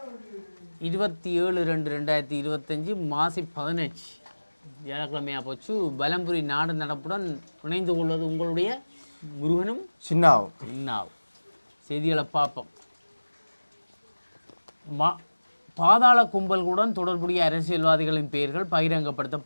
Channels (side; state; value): both; inverted; correlation -1.00